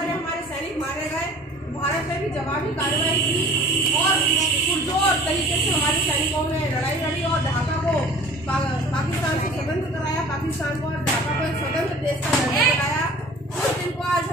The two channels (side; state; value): both; normal; correlation 0.46